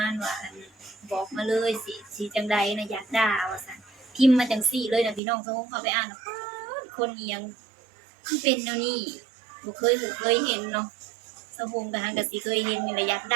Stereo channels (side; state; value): left; drops out; at 5.2 s